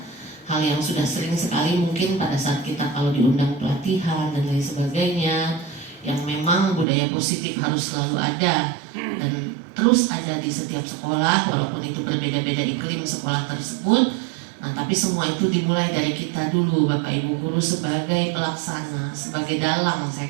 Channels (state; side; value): drops out; left; at 6.9 s